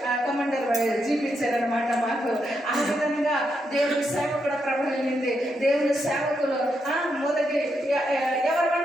కమాండర్ చూపించారనమాట మాకు. ఆ విధంగా దేవుని సేవ కూడా ప్రభావించింది. దేవుని సేవకులు మొదటి ఎవరు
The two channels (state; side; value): normal; both; correlation 0.81